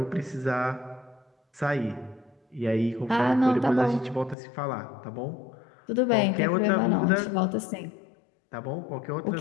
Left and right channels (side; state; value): right; drops out; at 4.4 s